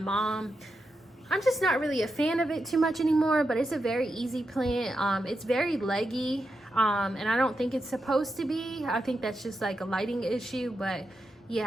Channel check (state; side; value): normal; both; correlation 0.87